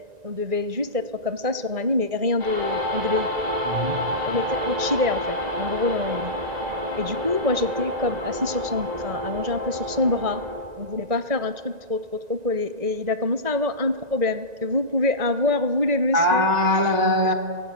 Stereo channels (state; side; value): late; left; 1.9 ms